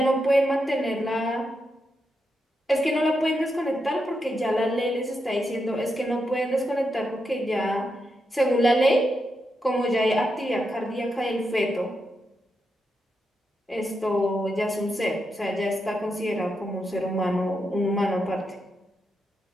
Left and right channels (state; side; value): normal; both; correlation 0.84